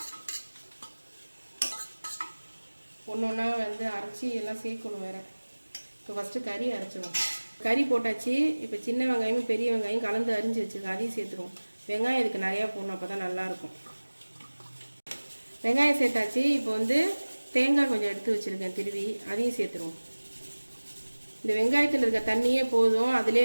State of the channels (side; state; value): both; inverted; correlation -1.00